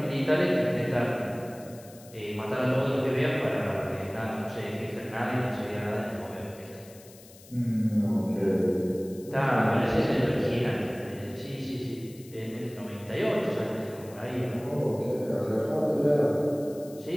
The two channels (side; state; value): left; noise; hiss, 22 dB below the sound